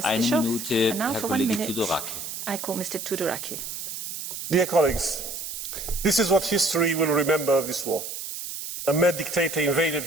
Bischoff. And now for 1 minute, I call Mr. Tudoraki. Dear colleagues, this is what history will remember of this war. A mad dictator invaded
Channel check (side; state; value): right; noise; hiss, 7 dB below the sound